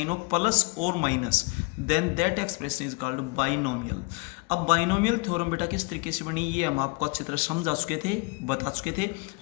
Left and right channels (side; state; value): right; quieter; 28.0 dB